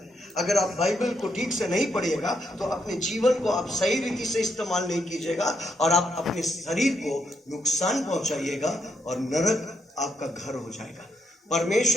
अगर आप बाइबल को ठीक से नहीं पढ़िएगा तो अपने जीवन को आप सही रीति से इस्तेमाल नहीं कीजिएगा और आप अपने शरीर को नुकसान पहुंचाइएगा और नरक आपका घर हो जाएगा।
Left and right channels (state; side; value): normal; both; correlation 0.77